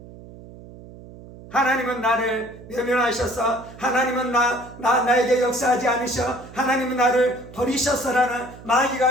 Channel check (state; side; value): noise; right; hum, 18 dB below the sound